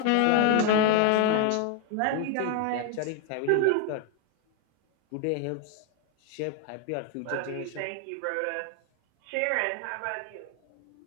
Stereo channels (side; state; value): both; different; correlation 0.00